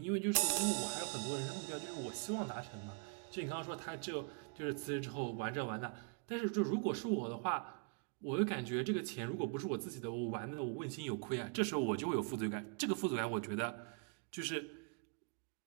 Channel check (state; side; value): quieter; left; 37.3 dB